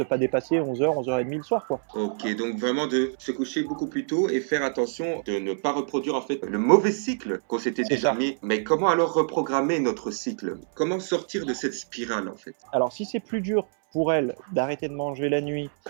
pas dépasser 11h, 11h30 le soir, quoi. Ok, donc vraiment de se coucher beaucoup plus tôt et faire attention de ne pas reproduire en fait le mauvais cycle qu'on s'était C'est ça. déterminé. Mais comment alors reprogrammer notre cycle? Comment sortir de cette spirale en fait? Alors, si c'est plus dur pour elle d'arrêter de manger la nuit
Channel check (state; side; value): silent; left; 61 dB below the other